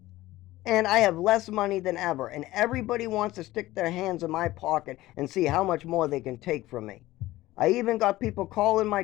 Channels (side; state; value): right; quieter; 17.0 dB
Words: and I have less money than ever, and everybody wants to stick their hands in my pocket and see how much more they can take from me. I even got people calling my